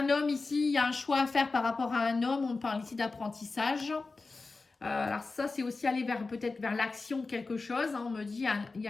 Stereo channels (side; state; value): right; quieter; 3.8 dB